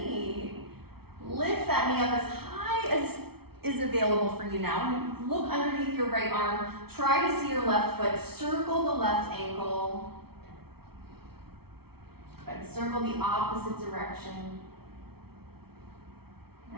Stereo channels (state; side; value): late; left; 0.95 ms